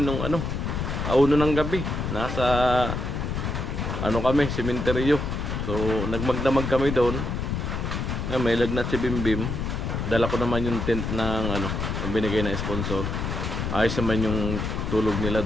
nung auno ng gabi. Nasa kami, sementeryo. So nagmagdamag kami doon. May lagnat si Bimbim. Dala ko naman yung tent ng binigay na sponsor. Ayos naman yung tulog nila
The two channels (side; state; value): left; noise; rumble, 3 dB below the sound